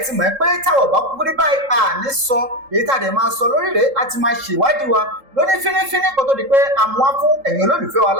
ti mọ̀ pé táwọn bá kúkú rí báyìí àní sọ èyí tá a dẹ̀ máa sọ lórí rẹ̀ á ti máa ṣèwádìí wa lóní fínífíní kó tó di pé a mú wá fún ẹ̀yin olólùfẹ́ wa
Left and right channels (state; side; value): late; left; 3.7 ms